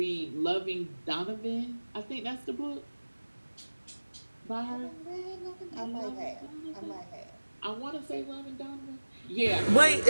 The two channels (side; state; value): both; inverted; correlation -1.00